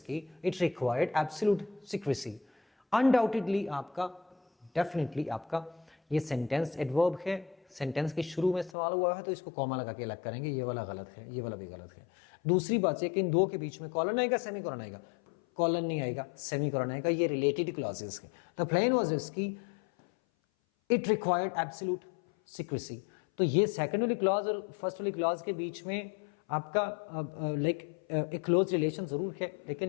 it required absolute secrecy. Undoubtedly आपका, डेफिनेटली आपका, ये सेंटेंस एडवर्ब है, सेंटेंस के शुरू में सवाल हुआ है तो इसको कॉमा लगा के अलग करेंगे, ये वाला गलत है, ये वाला भी गलत है। दूसरी बात है कि इन दो के बीच में कॉलन आएगा, सेमी कॉलन आएगा, कॉलन नहीं आएगा, सेमी कॉलन आएगा, ये रिलेटेड क्लॉजेस है। द प्लेन वाज इसकी इट रिक्वायर्ड एब्सोल्यूट सीक्रेसी। तो ये सेकंड वाली क्लॉज और फर्स्ट वाली क्लॉज के बीच में आपका एक क्लोज रिलेशन जरूर है, लेकिन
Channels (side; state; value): right; drops out; at 8.8 s